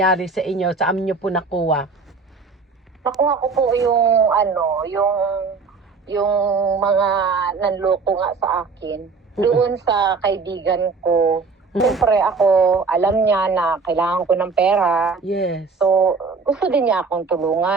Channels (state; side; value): quieter; left; 4.6 dB